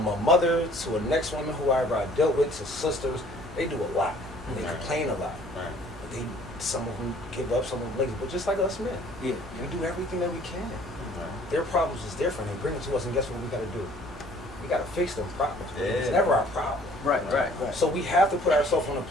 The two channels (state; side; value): noise; right; hum, 20 dB below the sound